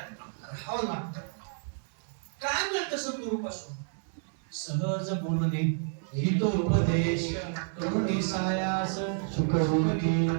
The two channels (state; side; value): silent; left; digital silence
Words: राहावं लागतं. काय मिळतं सद्गुरू पासून? सहज बोलणे, हितोपदेश, करुणी सायास, सुखरूपी.